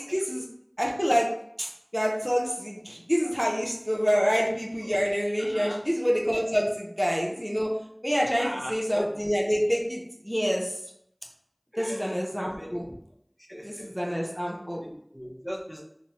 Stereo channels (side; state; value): both; identical; correlation 1.00